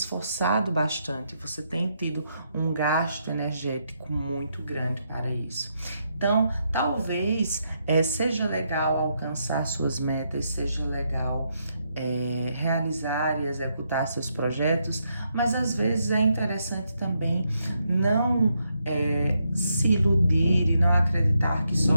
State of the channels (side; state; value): both; inverted; correlation -0.79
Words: bastante, você tem tido um gasto energético muito grande para isso. Então, talvez seja legal alcançar suas metas, seja legal realizar e executar seus projetos, mas às vezes é interessante também não se iludir e não acreditar que só